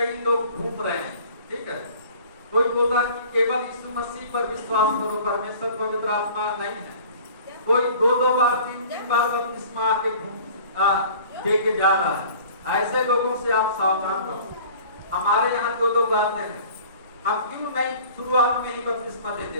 लोग घूम रहे हैं, ठीक है। कोई बोला कि केवल यीशु मसीह पर विश्वास करो, परमेश्वर पवित्र आत्मा नहीं है। कोई दो बार तीन बार बपतिस्मा आके दे के जा रहा है। ऐसे लोगों से आप सावधान रहो। हमारे यहाँ दो लोग आते हैं, हम क्यों नहीं शुरुआत में ही बपतिस्मा दे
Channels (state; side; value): inverted; both; correlation -0.46